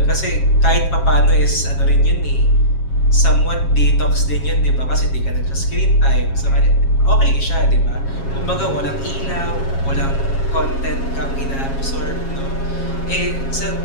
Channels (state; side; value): late; right; 7.4 ms